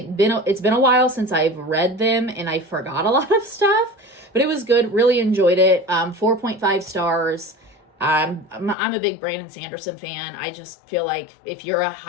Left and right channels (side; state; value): right; drops out; at 8.8 s